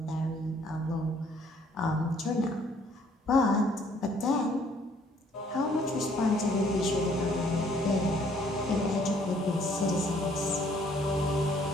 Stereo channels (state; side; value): normal; both; correlation 0.62